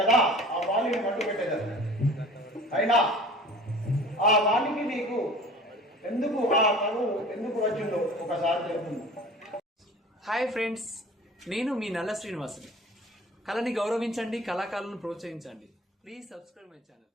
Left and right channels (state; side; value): normal; both; correlation 0.43